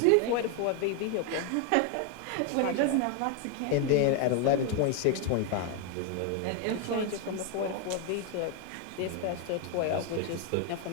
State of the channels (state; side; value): different; both; correlation 0.01